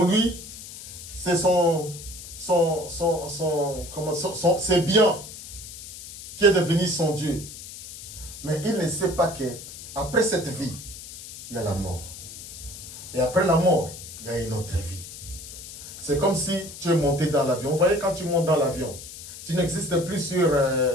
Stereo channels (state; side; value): noise; left; hiss, 13 dB below the sound